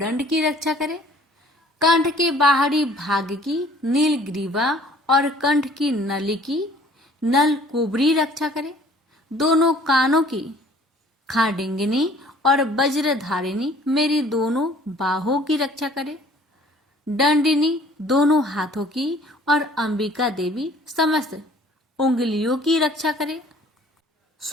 की रक्षा करे। कंठ के बाहरी भाग की नीलग्रीवा और कंठ की नली की नल कुबरी रक्षा करे। दोनों कानों की खाडिंगिनी और वज्रधारिणी मेरी दोनों बाहों की रक्षा करे। दंडिनी दोनों हाथों की और अंबिका देवी समस्त उंगलियों की रक्षा करे।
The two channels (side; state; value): both; normal; correlation 0.54